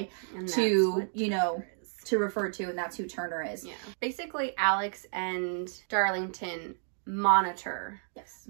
to, you know, to refer to, and that's who Turner is. Yeah. Basically, Alex and Darlington monitor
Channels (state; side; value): silent; left; 57 dB below the other